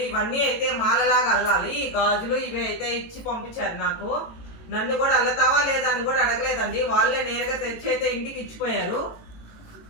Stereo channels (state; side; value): late; right; 18 ms